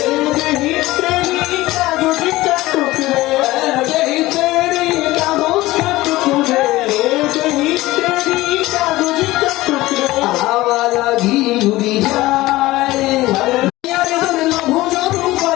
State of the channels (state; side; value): quieter; right; 18.2 dB